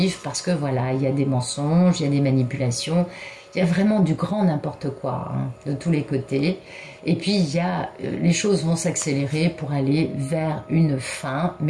parce que voilà, il y a des mensonges, il y a des manipulations, il y a vraiment du grand n'importe quoi, hein, de tous les côtés. Et puis les choses vont s'accélérer pour aller vers une fin,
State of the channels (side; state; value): both; identical; correlation 1.00